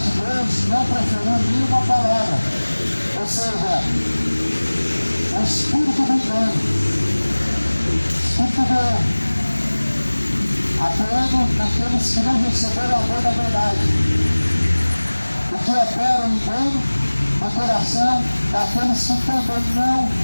Deus não preferiu nenhuma palavra. Ou seja, o espírito do engano, o espírito do erro, atuando naqueles que não receberam o amor da verdade. O que opera o engano no coração daqueles que também não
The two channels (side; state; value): both; inverted; correlation -1.00